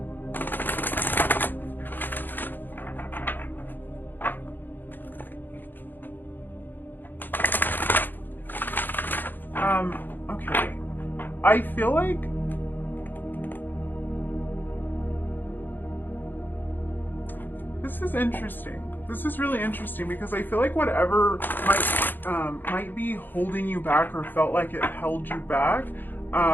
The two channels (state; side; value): late; right; 0.091 ms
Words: Okay. I feel like this is interesting. This is really interesting because I feel like whatever might be holding you back or felt like it held you back,